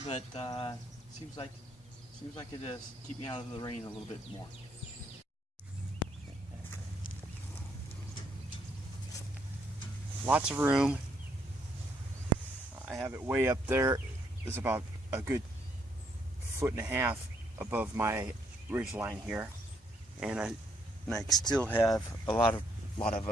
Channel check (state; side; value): normal; both; correlation 0.71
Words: but seems like it does keep me out of the rain a little bit more. Lots of room. I have it way up there. It's about a good 1.5 feet above my ridge line here, and I still have a lot of